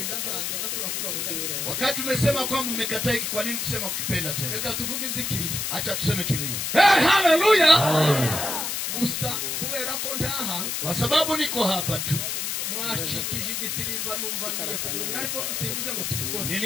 azanze azasubira kuvuga ngo ndabikora. Wakati umesema kwamba mmekataa hiki, kwa nini kusema ukipenda tena? Reka tuvuge ivy'ikiriyo. Acha tuseme kilio. Haleluya. Gusa kubera ko ntaha Kwa sababu niko hapa tu. mwacikije igisirimba numva ngiye kubura ariko simvuze ngo tubikore.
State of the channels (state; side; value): noise; left; hiss, 2 dB below the sound